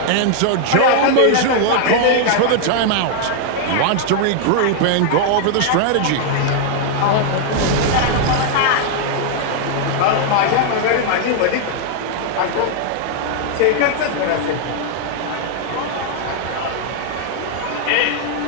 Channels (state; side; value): different; both; correlation 0.00